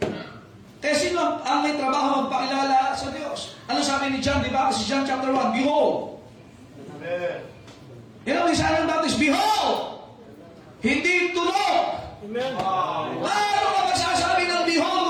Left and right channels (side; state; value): both; identical; correlation 1.00